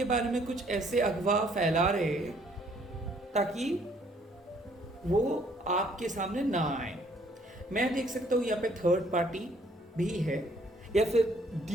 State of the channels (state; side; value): normal; both; correlation 0.63